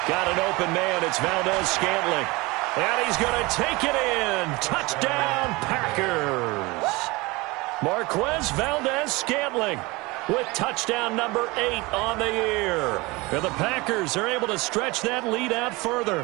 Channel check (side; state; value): left; quieter; 23.4 dB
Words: Got an open man. It's Valdez-Scantling. And he's going to take it in. Touchdown, Packers. Marquez Valdez-Scantling with touchdown number 8 on the year. And the Packers are able to stretch that lead out